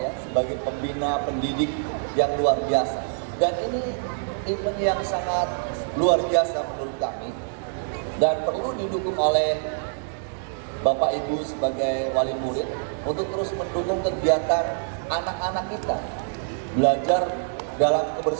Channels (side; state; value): left; silent; 61 dB below the other